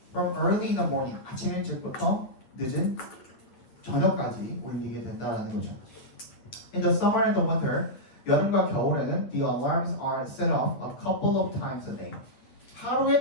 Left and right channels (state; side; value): late; right; 9.2 ms